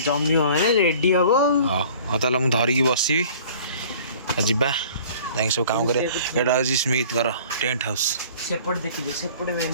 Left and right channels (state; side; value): inverted; both; correlation -0.49